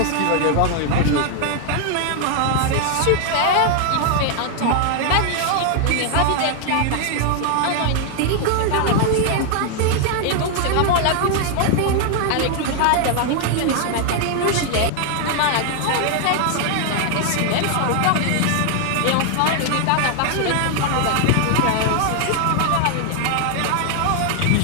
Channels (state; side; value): different; both; correlation 0.00